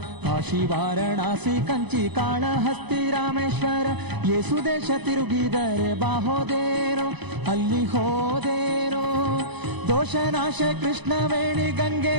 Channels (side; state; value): left; late; 0.99 ms